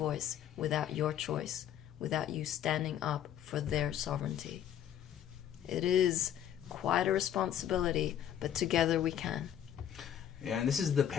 without your choice, without you standing up for their sovereignty. It is quite a responsibility, but together we can. Yeah, and this is the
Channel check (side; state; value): right; quieter; 10.3 dB